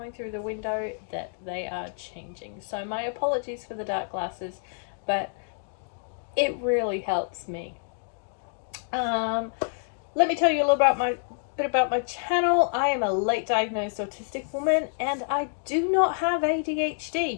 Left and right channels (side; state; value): right; silent; digital silence